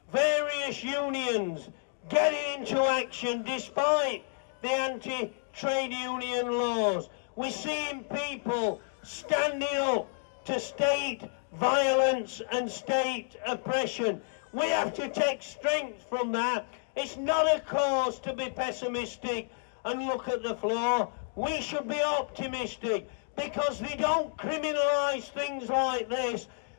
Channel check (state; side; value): silent; right; digital silence